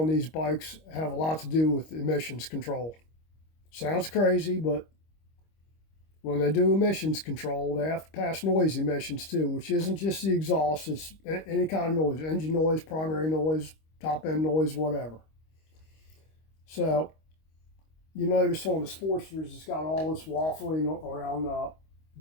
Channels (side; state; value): right; late; 25 ms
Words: these bikes have a lot to do with emissions control. Sounds crazy, but when they do emissions control, they have to pass noise emissions too, which isn't just the exhaust, it's any kind of noise, engine noise, primary noise, top end noise, whatever. So you notice on the Sportsters, it's got all this waffling around the